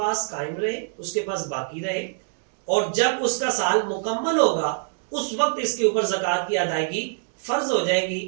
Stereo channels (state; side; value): silent; left; digital silence